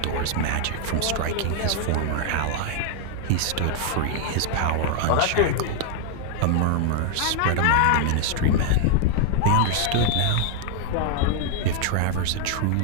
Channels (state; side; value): different; both; correlation 0.00